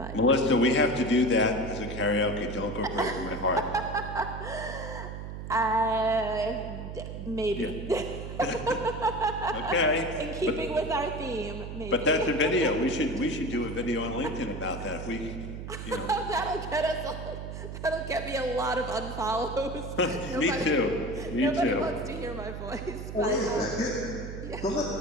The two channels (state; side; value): noise; right; hum, 8 dB below the sound